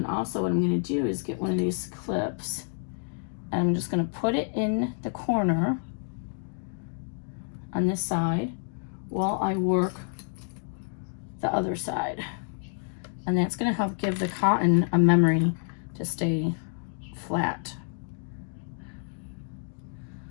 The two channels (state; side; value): silent; right; 58 dB below the other